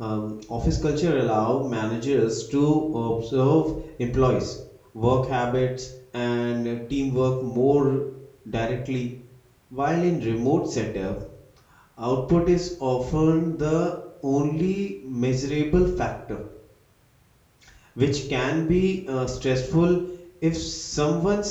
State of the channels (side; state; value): both; identical; correlation 1.00